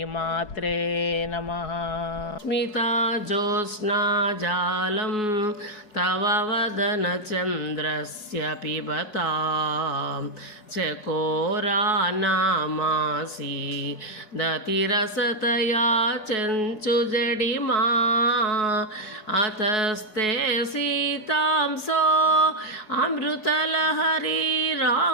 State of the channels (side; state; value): right; late; 4.7 ms